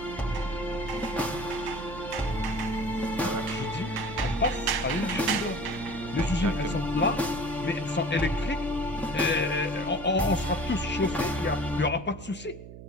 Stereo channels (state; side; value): noise; right; hum, 14 dB below the sound